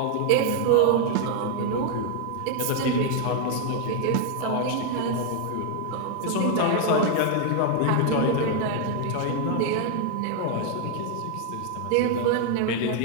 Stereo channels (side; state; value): both; different; correlation 0.01